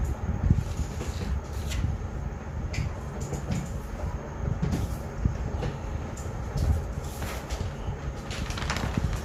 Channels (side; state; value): both; identical; correlation 1.00